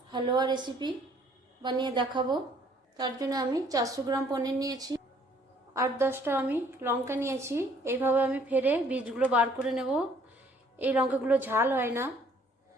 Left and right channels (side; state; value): both; normal; correlation 0.60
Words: হালুয়া রেসিপি বানিয়ে দেখাবো। তার জন্য আমি 400 গ্রাম পনির নিয়েছি, 8-10টা আমি লঙ্কা নিয়েছি। এইভাবে আমি ফেরে বীজগুলো বার করে নেব। এই লঙ্কাগুলো ঝাল হয় না।